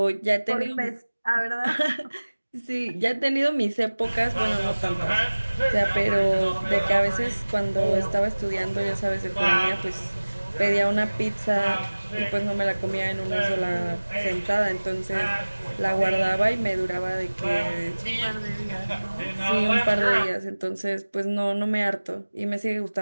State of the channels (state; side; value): inverted; both; correlation -1.00